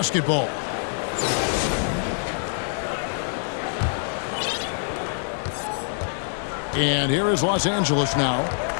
And here is Los Angeles now,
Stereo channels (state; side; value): silent; right; digital silence